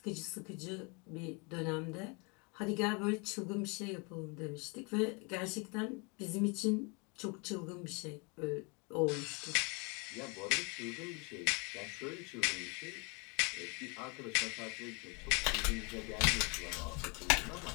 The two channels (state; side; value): quieter; right; 31.5 dB